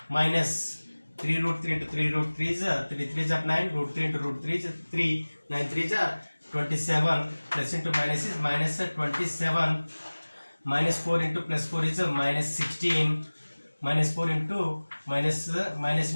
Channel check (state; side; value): inverted; both; correlation -1.00